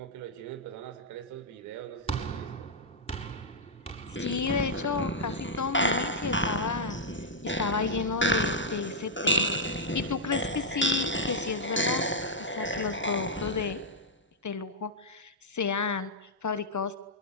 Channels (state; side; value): normal; both; correlation -0.05